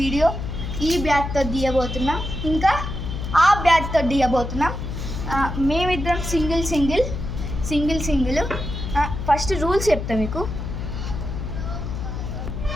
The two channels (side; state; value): left; noise; hum, 5 dB below the sound